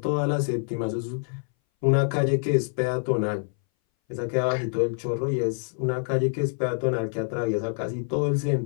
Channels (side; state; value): right; silent; 59 dB below the other